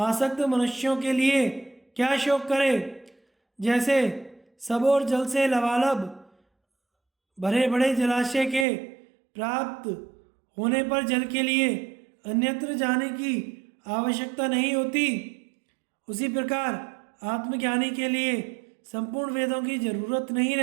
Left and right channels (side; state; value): left; drops out; at 8.7 s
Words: मनुष्यों के लिए क्या शोक करे। जैसे सब और जल से लबालब भरे बड़े जलाशय के प्राप्त होने पर जल के लिए अन्यत्र जाने की आवश्यकता नहीं होती, उसी प्रकार आत्मज्ञानी के लिए संपूर्ण वेदों की जरूरत नहीं